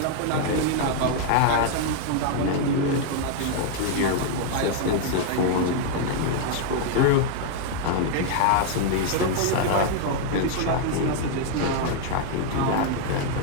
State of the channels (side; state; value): both; different; correlation 0.00